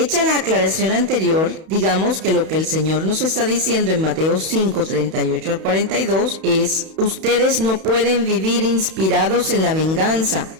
la aclaración anterior, digamos que lo que el Señor nos está diciendo en Mateo 5, 38 al 42 es: ustedes no pueden vivir inspirados en la venganza.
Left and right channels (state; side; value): late; left; 31 ms